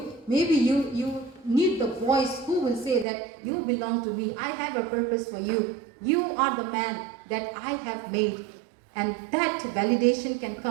Maybe you need the voice who will say that you belong to me. I have a purpose for you. You are the man that I have made. And that validation can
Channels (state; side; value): drops out; left; at 3.1 s